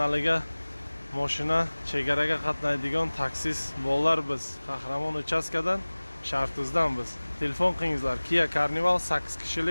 mashina chegaraga qatnaydigan taksis bolalar biz Qahramon uchastkadan Shartuzdan biz telefon qilingizlar Kia Carnival 8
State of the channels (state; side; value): inverted; both; correlation -1.00